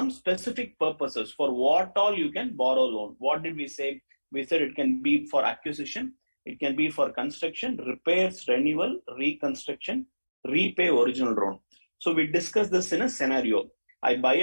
specific purposes for what all you can borrow loan. What did we say? We said it can be for acquisition, it can be for construction, repairs, renewal, reconstruction, repay original loan. So we discussed this in a scenario. I buy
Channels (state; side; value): inverted; both; correlation -1.00